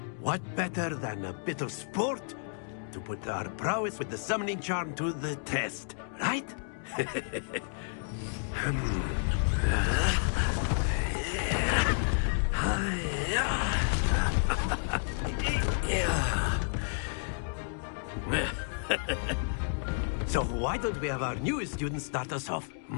what better than a bit of sport to put our prowess with the summoning charm to the test, right? So why don't we have our newest student start us off?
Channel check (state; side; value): silent; right; digital silence